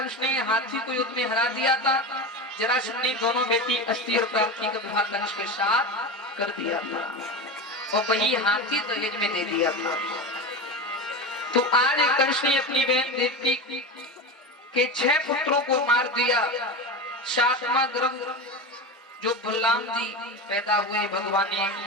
ने हाथी को युद्ध में हरा दिया था। जरासंध ने दोनों बेटी अस्ति और प्राप्ति का विवाह कंस के साथ कर दिया था और वही हाथी दहेज में दे दिया था। तो आज कंस ने अपनी बहन देवकी के 6 पुत्रों को मार दिया। 7वां गर्भ जो बलराम जी पैदा हुए, भगवान ने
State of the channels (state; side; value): normal; both; correlation 0.23